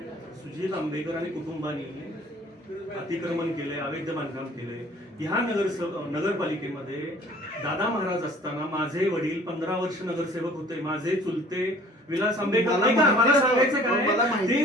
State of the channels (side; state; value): both; normal; correlation 0.51